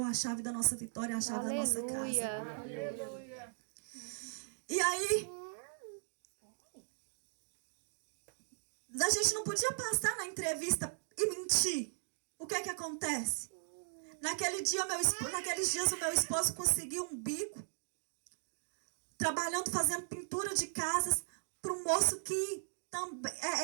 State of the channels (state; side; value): silent; left; digital silence